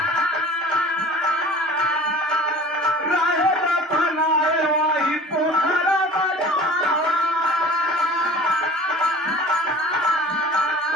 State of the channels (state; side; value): normal; both; correlation 0.43